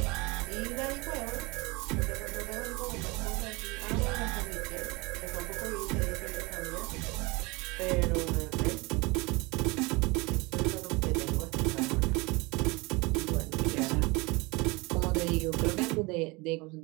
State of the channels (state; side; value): quieter; left; 25.4 dB